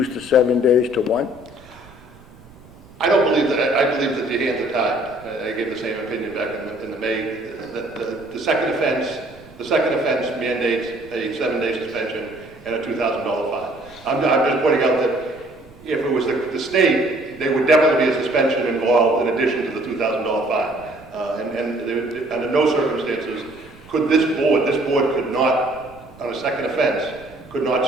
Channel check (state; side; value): noise; right; rumble, 24 dB below the sound